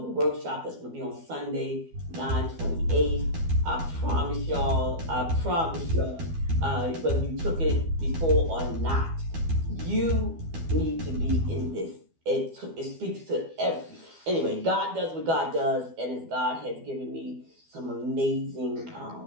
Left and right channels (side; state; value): left; late; 12 ms